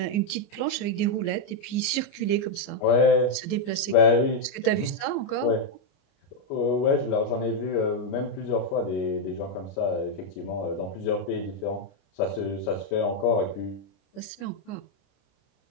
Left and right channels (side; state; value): right; late; 29 ms